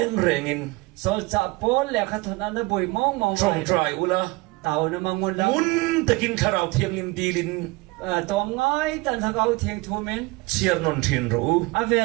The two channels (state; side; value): quieter; left; 23.4 dB